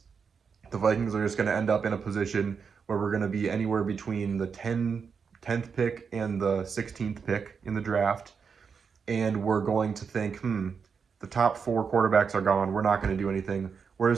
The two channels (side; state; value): left; quieter; 6.0 dB